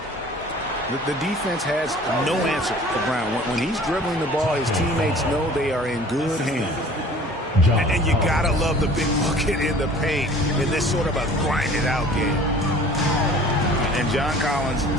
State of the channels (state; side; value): normal; both; correlation 0.48